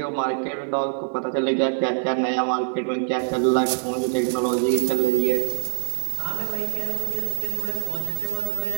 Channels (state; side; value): silent; left; digital silence